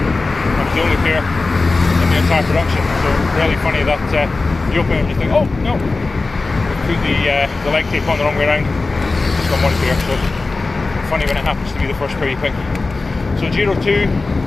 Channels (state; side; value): quieter; right; 3.6 dB